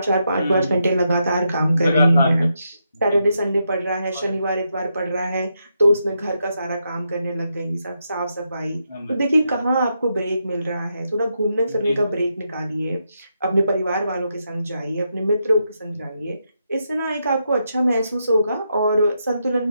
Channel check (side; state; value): both; inverted; correlation -0.82